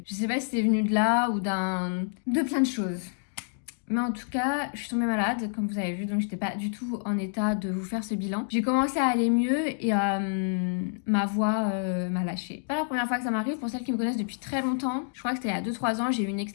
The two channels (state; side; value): silent; right; digital silence